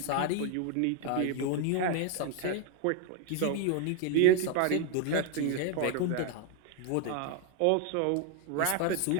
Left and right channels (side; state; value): both; different; correlation 0.01